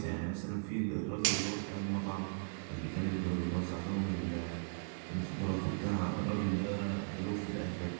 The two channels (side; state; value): left; silent; 53 dB below the other